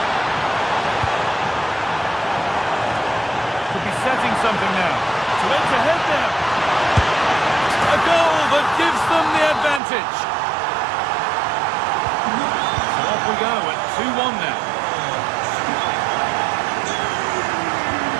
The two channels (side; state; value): left; drops out; at 9.8 s